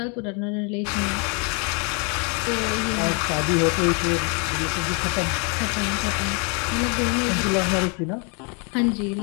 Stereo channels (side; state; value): right; quieter; 35.3 dB